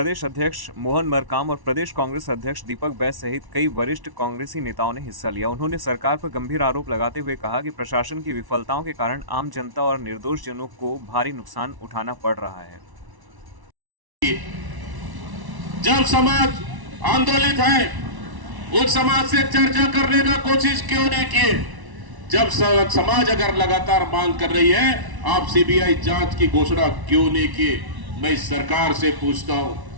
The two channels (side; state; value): left; late; 1.1 ms